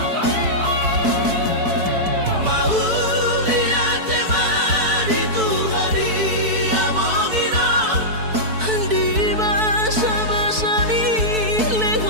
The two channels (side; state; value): left; late; 4.6 ms